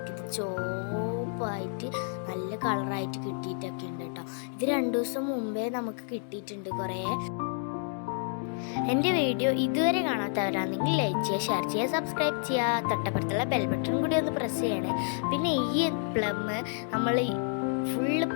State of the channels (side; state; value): right; silent; 58 dB below the other